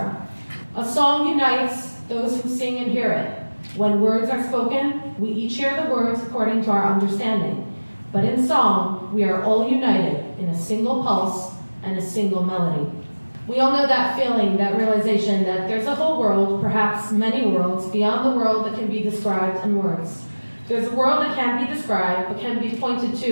A song unites those who sing and hear it. When words are spoken, we each hear the words according to our understanding. But in song, we are all united in a single pulse and a single melody. We all know that feeling, that realization that there's a whole world, perhaps many worlds, beyond the world that can be described in words. There's a world that can't be described, but can be pointed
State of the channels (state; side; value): inverted; both; correlation -1.00